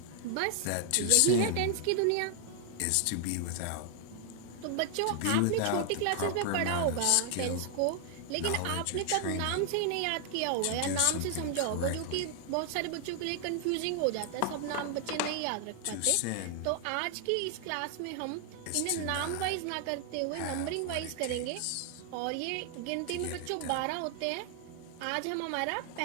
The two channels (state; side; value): different; both; correlation 0.00